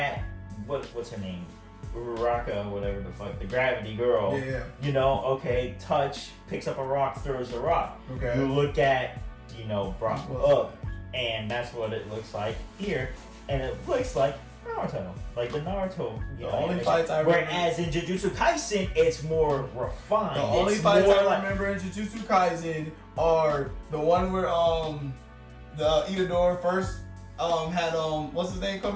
what's her name? Uraraka, whatever the fuck, the gravity girl. Yeah. Touch, picks up a rock, throws the rock. Okay. You look at, Brock up, and that's what it looks like here. And it looks like Naruto. Like the Naruto, The only animation. fights I remember- Whereas in Jujutsu Kaisen, it's more refined. The only It's fights more I like- remember in Jujutsu Kaisen are the one where the Itadori first had what's his name come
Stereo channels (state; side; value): identical; both; correlation 1.00